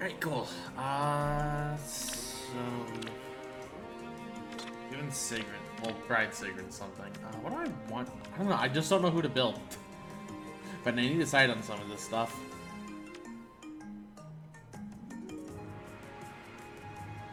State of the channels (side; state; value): both; identical; correlation 1.00